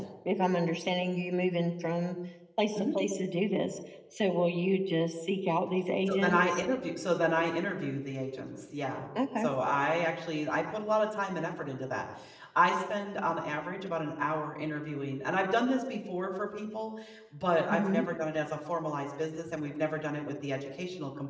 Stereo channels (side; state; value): both; identical; correlation 1.00